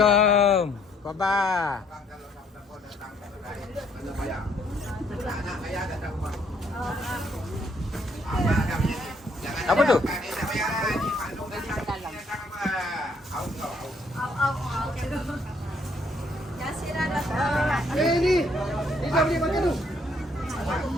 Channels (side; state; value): both; normal; correlation 0.67